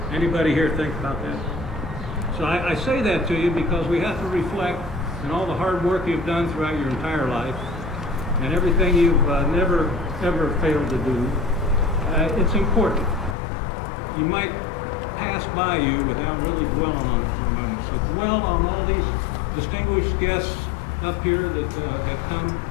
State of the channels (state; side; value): drops out; right; at 13.4 s